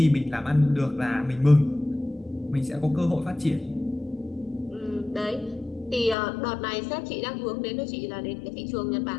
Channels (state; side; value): drops out; right; at 6.2 s